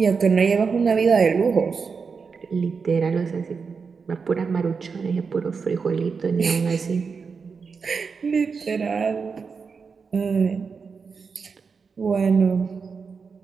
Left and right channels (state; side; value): quieter; left; 5.3 dB